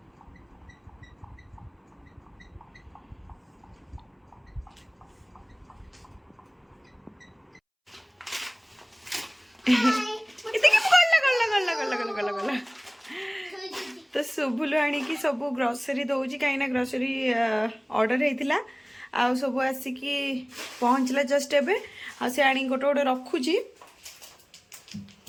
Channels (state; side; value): identical; both; correlation 1.00